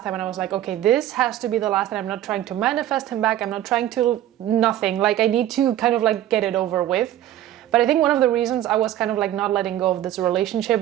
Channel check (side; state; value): left; quieter; 12.6 dB